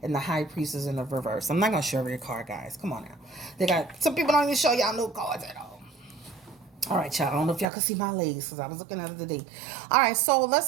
and the High Priestess in the reverse. I'm not going to show every card, guys. Come on now. They got some people don't even show y'all no cards at all. All right, y'all. I don't know if y'all can see my legs because I was looking at it today. All right, so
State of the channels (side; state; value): left; drops out; at 7.7 s